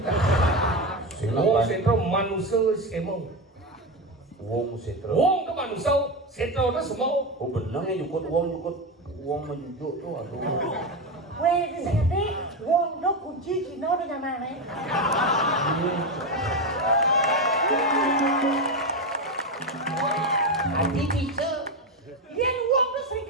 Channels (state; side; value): normal; both; correlation 0.14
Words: Wong sentro manusia semua. wong setro Wong ke manusia sentro na semua. oh bener ya jukut wong menjujuk tuh aduh Weh, bisa ngerti? Wong do kunci Cina udah nyaman nih. Adi bisa. Yang wong do